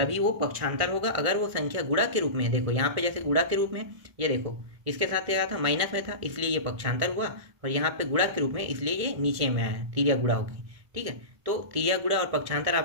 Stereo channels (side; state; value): left; late; 1.6 ms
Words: वो पक्षांतर होगा। अगर वो संख्या गुणा के रूप में है, देखो यहाँ पे जैसे गुणा के रूप में, ये देखो इसके साथ क्या था, माइनस में था इसलिए ये पक्षांतर हुआ, और यहाँ पे गुणा के रूप में इसलिए ये नीचे में आया, तिर्या गुणा होगी। ठीक है, तो तिर्या गुणा और पक्षांतर